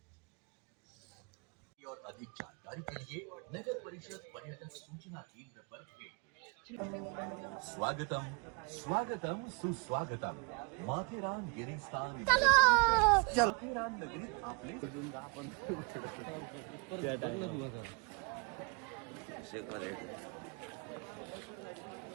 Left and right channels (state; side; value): quieter; left; 33.6 dB